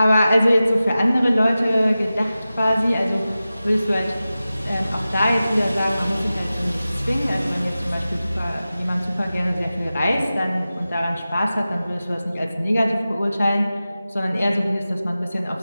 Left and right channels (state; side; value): inverted; both; correlation -0.95